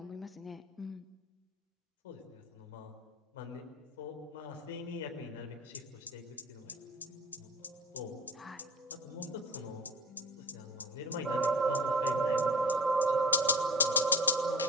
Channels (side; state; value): both; normal; correlation 0.36